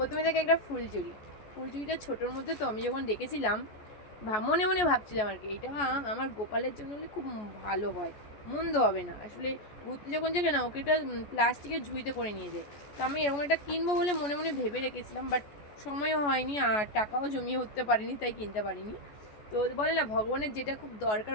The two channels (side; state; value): right; late; 14 ms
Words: দেখে একটা ফুলঝুরি। ফুলঝুরিটা ছোটোর মধ্যে, তো আমি যখন দেখেছিলাম মনে মনে ভাবছিলাম আর কি, এটা আমার গোপালের জন্য হলে খুব ভালো হয়, মন্দ হবে না। আসলে ঘুরতে যখন যাবে না, ওকে একটা প্লাস্টিকের ঝুড়িতে করে নিয়ে যায়। তো আমি এরকম একটা কিনবো বলে মনে মনে ভেবে রেখেছিলাম, বাট সময়ও হয়নি আর টাকাও জমিয়ে উঠতে পারিনি, তাই কিনতে পারিনি। তো বলে না, ভগবানের যেটা খুব দরকার